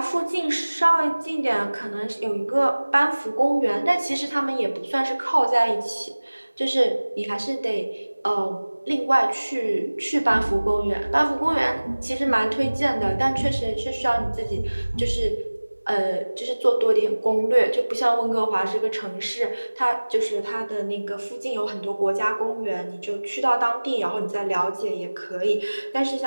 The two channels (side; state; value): both; inverted; correlation -1.00